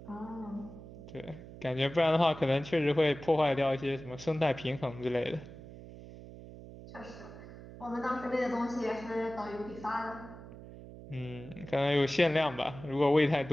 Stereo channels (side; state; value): right; noise; hum, 15 dB below the sound